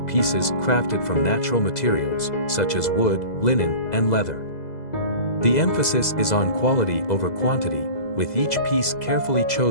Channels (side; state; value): right; late; 2.0 ms